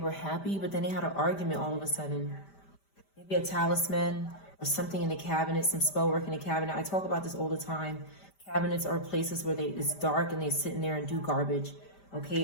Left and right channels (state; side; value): late; right; 5.1 ms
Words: happy, but then they had an argument all of a sudden. Maybe a talisman or something in the cabinet, some spell work in the cabinet. I talk about this all the time. Cabinets are places where it's dark and they sit in there and do garbage.